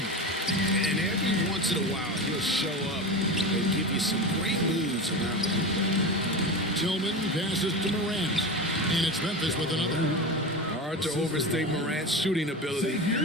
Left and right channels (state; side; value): normal; both; correlation 0.25